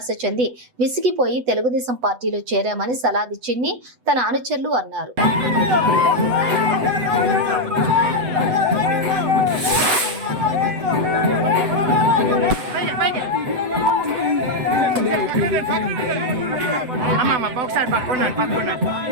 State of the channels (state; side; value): late; left; 8.0 ms